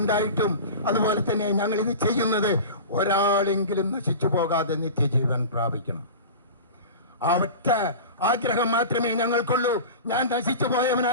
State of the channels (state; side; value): inverted; both; correlation -0.32